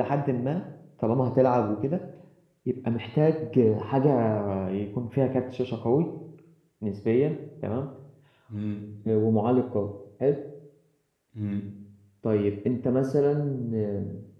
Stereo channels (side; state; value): both; identical; correlation 1.00